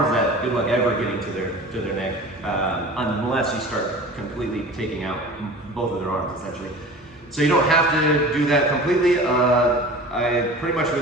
that good luck ever getting to their neck, unless you start completely taking out both of their arms, essentially. So you don't have to do that completely. I pretty much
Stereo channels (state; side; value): normal; both; correlation 0.38